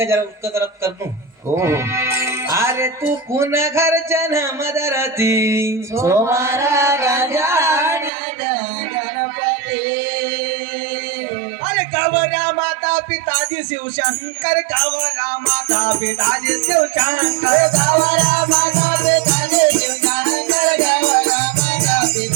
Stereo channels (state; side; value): drops out; left; at 8.1 s